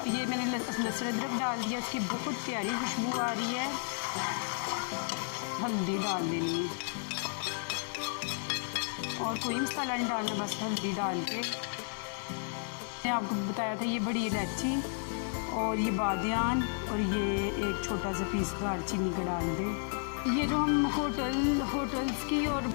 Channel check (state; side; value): silent; right; 56 dB below the other